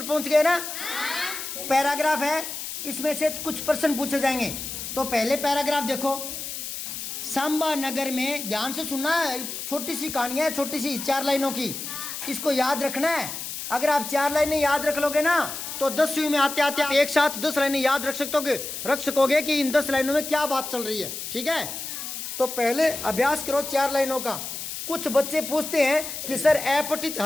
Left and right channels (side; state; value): left; noise; hiss, 7 dB below the sound